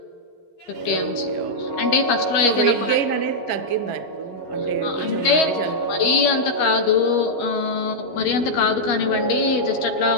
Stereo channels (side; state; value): right; late; 12 ms